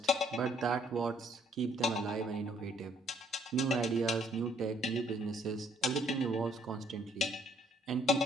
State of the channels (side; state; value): both; normal; correlation 0.65